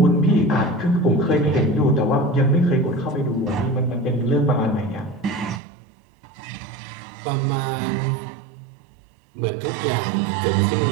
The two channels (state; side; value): drops out; left; at 5.6 s